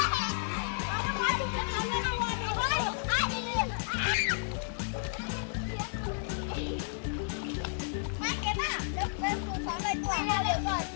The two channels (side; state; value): right; silent; digital silence